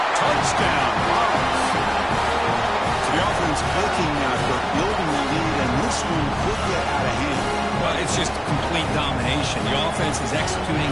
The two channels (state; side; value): identical; both; correlation 1.00